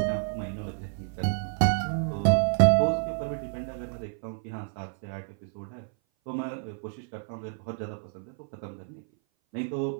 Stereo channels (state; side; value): silent; left; 57 dB below the other